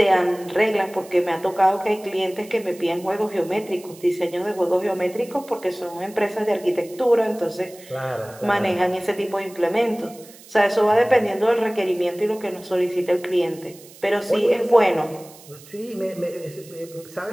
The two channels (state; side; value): noise; right; hiss, 21 dB below the sound